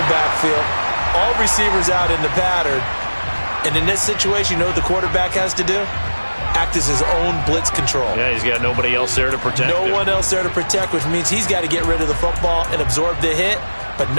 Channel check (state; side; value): inverted; both; correlation -1.00